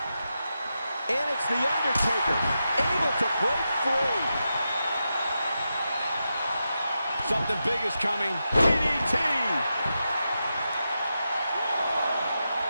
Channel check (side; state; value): both; inverted; correlation -0.88